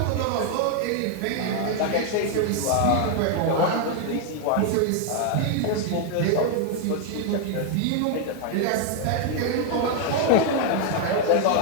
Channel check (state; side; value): different; both; correlation 0.00